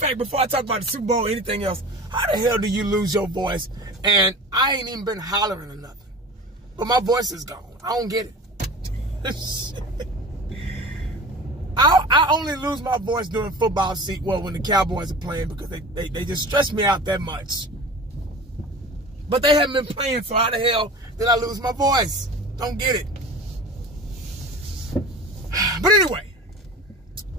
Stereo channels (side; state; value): both; normal; correlation 0.36